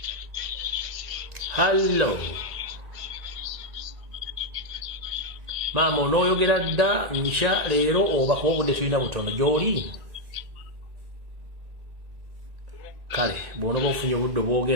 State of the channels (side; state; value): left; late; 1.9 ms